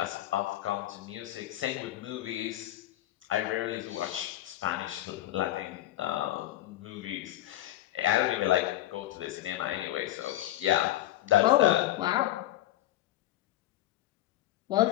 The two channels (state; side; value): quieter; right; 14.3 dB